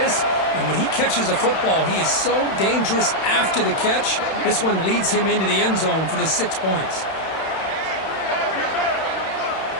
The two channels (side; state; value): right; late; 31 ms